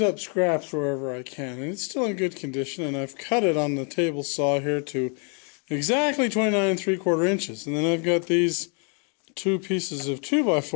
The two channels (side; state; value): right; quieter; 38.2 dB